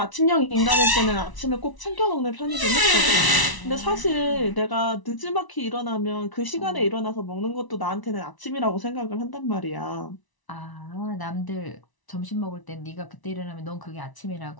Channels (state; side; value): late; right; 1.0 ms